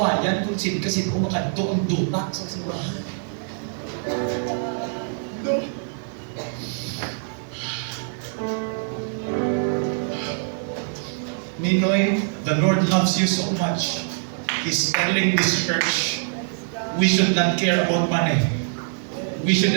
kung sino makadto ang duta sa simbahan. No. Ninoy, the Lord loves you so much. He's telling this church, we should not care about money. We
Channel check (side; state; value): left; silent; digital silence